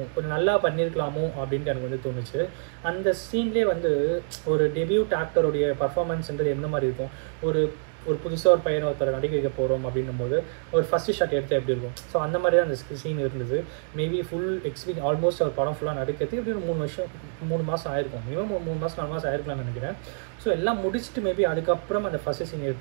கொஞ்சம் நல்லா பண்ணியிருக்கலாமோ அப்படின்ட்டு எனக்கு வந்து தோணுச்சு. அந்த சீன்லேயே வந்து ஒரு டெபியூட் ஆக்டருடைய பர்ஃபார்மன்ஸ்ன்றது எந்த மாதிரி இருக்கும், ஒரு புதுசாக ஒரு பையனை ஒருத்தரை நடிக்க வைக்க போகிறோம் அப்படின்னும் போது ஒரு ஃபஸ்ட்டு ஷாட் எடுத்தால் எப்படி இருக்கும். ஸோ அந்த மாதிரி தான் அந்த சீன் இருந்தது. மேபி ஃபுல் எக்ஸ்பீரியன்ஸ் ஆல்மோஸ்ட் ஒரு படம் ஃபுல்லாக நடிக்கிறதுக்கு எப்படி ஒரு 3 மாதம் ஆயிருக்கும். மினிமம் 3 மாதம் 4 மாதம் ஆயிருக்கலாம்னு நினைக்கிறேன். ஸோ எல்லாம் முடிச்சுட்டு மேபி அதுக்கப்புறம் அந்த ஃபஸ்ட்டு சீன்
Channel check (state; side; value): silent; left; 61 dB below the other